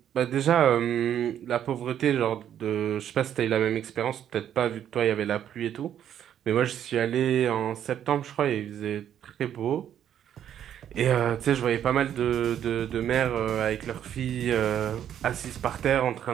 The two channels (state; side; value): quieter; left; 10.0 dB